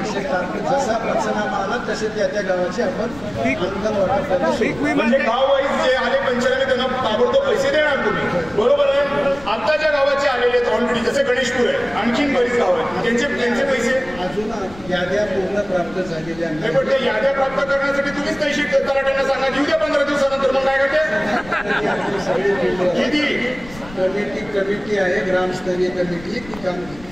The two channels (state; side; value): noise; left; rumble, 18 dB below the sound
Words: जसा पंचनामा आला तसे त्या गावाचे आपण अनुदान वाटप. म्हणजे गाव वाईज जे आले पंचनामे त्यांना ताबडतोब पैसे देणार तुम्ही, बरोबर आहे? आता ज्या गावाचे आलेले आहेत ऑलरेडी, जसे गणेशपूर आहे, आणखीन बरीच गाव आहेत, त्यांचे पैसे अजून याद्या पूर्ण प्राप्त झालेल्या नाही. पण ते याद्या प्राप्त करण्यासाठी तुम्हीच पैसे तलाट्यांना सांगा, येऊ द्या 15 दिवसानंतर. मग काय करते किती कमिटी आहे, ग्रामस्तरीय कमिटी, ती